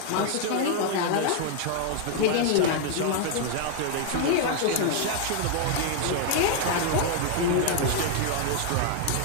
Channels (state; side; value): different; both; correlation 0.00